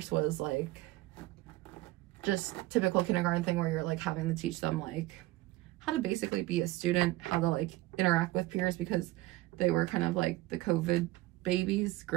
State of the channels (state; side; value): quieter; left; 18.0 dB